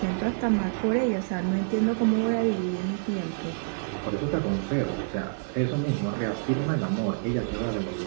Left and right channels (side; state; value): left; silent; digital silence